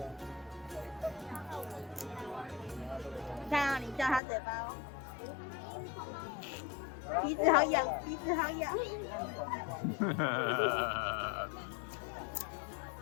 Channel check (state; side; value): drops out; right; at 4.2 s